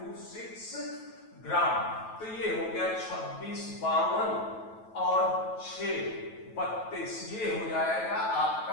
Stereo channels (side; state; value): right; late; 9.2 ms